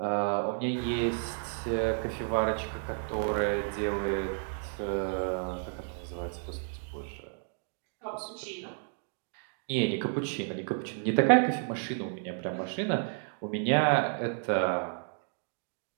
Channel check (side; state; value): left; silent; 57 dB below the other